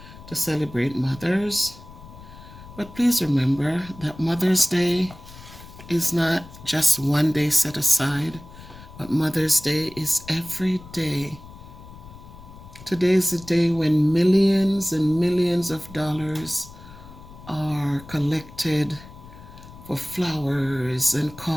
to celebrate mothers. But please remember that Mother's Day is not just one day set aside, but Mother's Day is every day. Today is the day when millions and millions of dollars are collected for flowers and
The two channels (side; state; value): left; noise; rumble, 18 dB below the sound